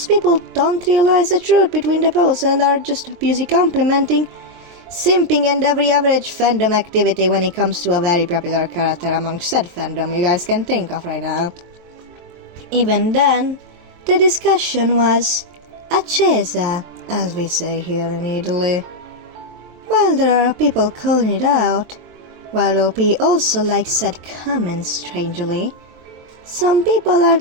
people don't realize the truth between the posts and are just busy complimenting, simping and every average fandom activity when it comes to a very popular character among said fandom you guys can think of right now. Even then, the discussion was accesa, as we say here in Italy. While there are people calling it out, while OP also likes said comment strangely, some people are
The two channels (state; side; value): late; left; 23 ms